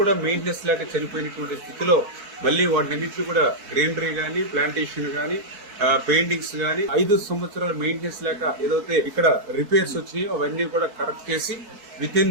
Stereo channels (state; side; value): late; left; 4.8 ms